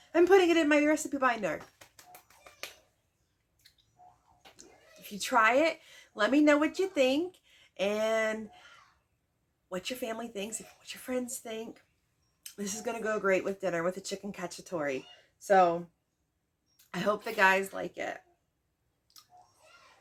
and putting it in my recipe binder. If you try it, let me know what you think and what your family thinks, what your friends think. This is going to go great with dinner with a chicken cacciatore. So I hope the guys like it.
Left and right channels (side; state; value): both; identical; correlation 1.00